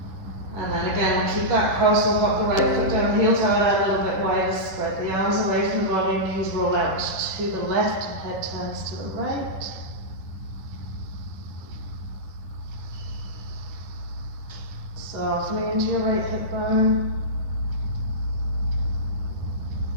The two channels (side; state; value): left; late; 10 ms